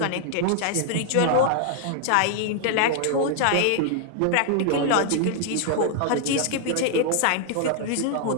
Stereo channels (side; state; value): both; different; correlation 0.00